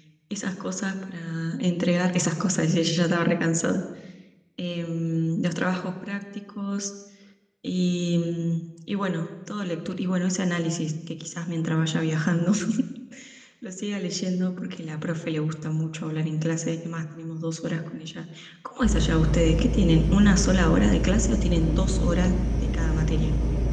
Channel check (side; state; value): both; identical; correlation 1.00